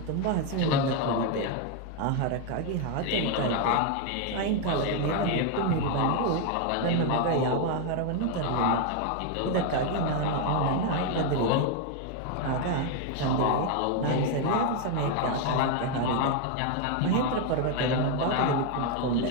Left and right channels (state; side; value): different; both; correlation 0.01